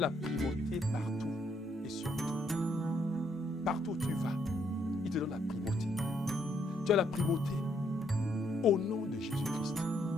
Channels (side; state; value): both; normal; correlation 0.72